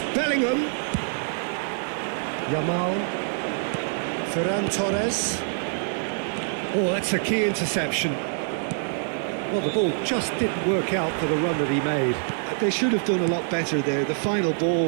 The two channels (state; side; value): silent; left; digital silence